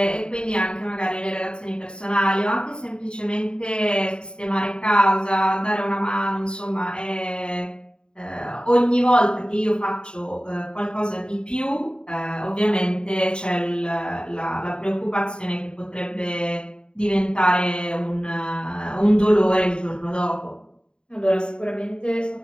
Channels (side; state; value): right; late; 0.050 ms